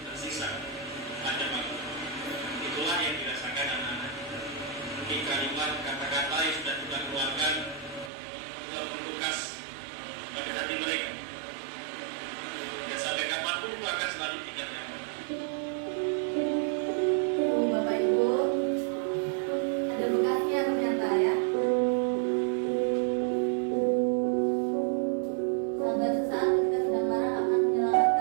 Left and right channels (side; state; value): left; drops out; at 8.1 s